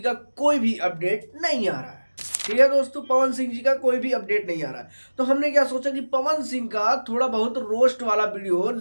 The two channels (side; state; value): both; inverted; correlation -1.00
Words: कोई भी अपडेट नहीं आ रहा है। ठीक है दोस्तों, पवन सिंह जी का कोई भी अपडेट नहीं आ रहा है। तो हमने क्या सोचा कि पवन सिंह का थोड़ा बहुत रोस्ट वाला वीडियो